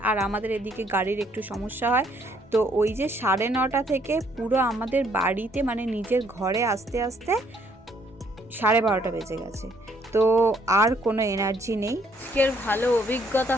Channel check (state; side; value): normal; both; correlation 0.67